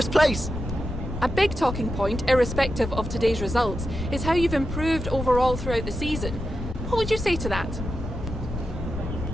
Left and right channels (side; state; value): left; noise; rumble, 7 dB below the sound